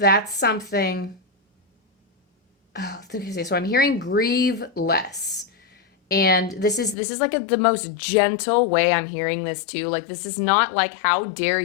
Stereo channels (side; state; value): right; drops out; at 7.0 s